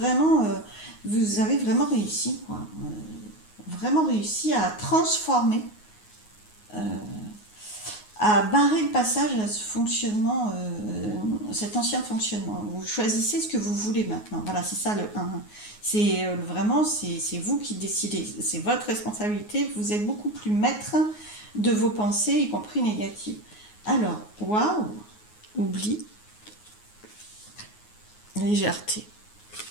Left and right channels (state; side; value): late; right; 9.5 ms